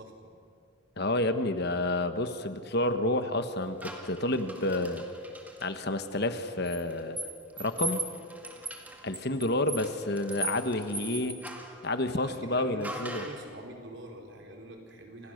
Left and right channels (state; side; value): normal; both; correlation 0.03